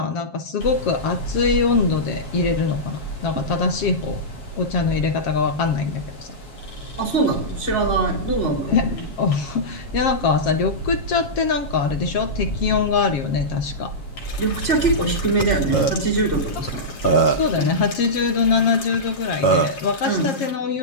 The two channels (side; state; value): right; late; 7.4 ms